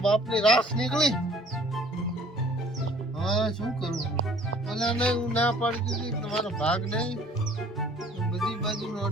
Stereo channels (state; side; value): normal; both; correlation 0.54